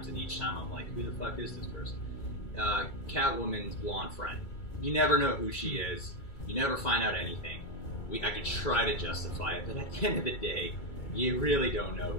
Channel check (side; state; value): right; late; 2.2 ms